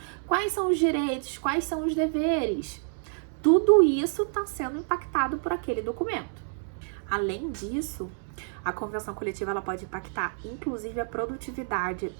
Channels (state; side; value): silent; left; 59 dB below the other